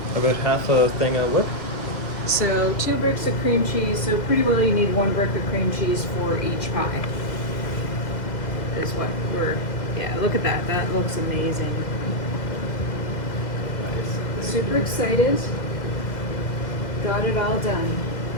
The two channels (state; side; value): late; right; 2.1 ms